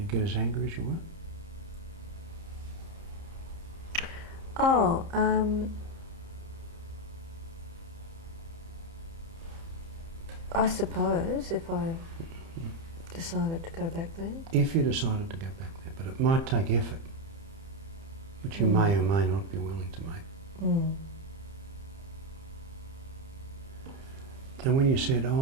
get as angry as you were? Oh, I suppose if I decided to go back there. If you decided to go back there, but it might take effort, which you may or may not be willing to make. Mm. And when you said,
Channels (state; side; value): late; left; 30 ms